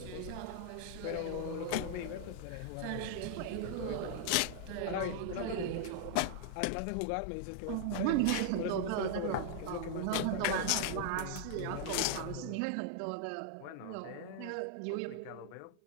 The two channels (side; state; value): both; different; correlation -0.01